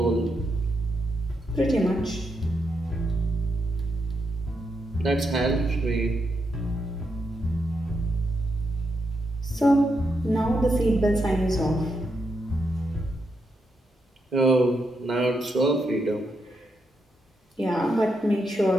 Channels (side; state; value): both; normal; correlation 0.82